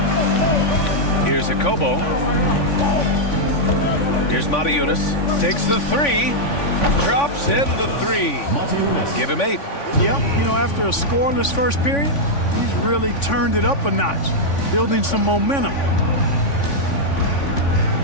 Here's Akobo. Here's Matajunas. Takes the three. Drops in the three. Give him 8. Yep, you know, after a scoreless first period, he's really turned it up a notch, building some momentum.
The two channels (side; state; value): right; late; 3.5 ms